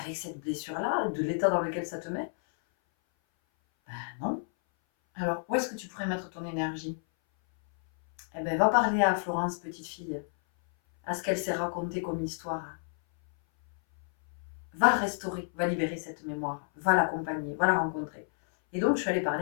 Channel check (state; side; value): silent; right; 57 dB below the other